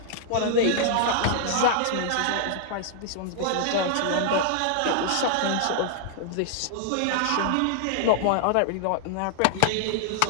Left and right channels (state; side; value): different; both; correlation -0.01